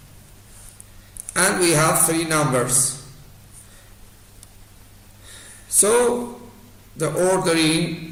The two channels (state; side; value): identical; both; correlation 1.00